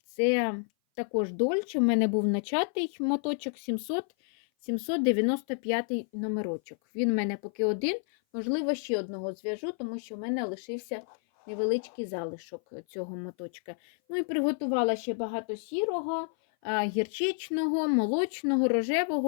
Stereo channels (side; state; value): right; silent; 56 dB below the other